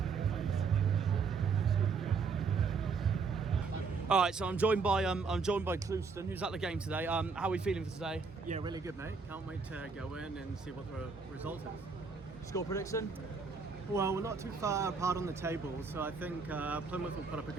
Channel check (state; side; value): quieter; left; 4.8 dB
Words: All right, so I'm joined by Clouston, who's at the game today. How are we feeling for today? Yeah, really good, mate. Can't wait to go in and see what the result is. Score prediction? Well, we're not too far apart on the table, so I think Plymouth will put up a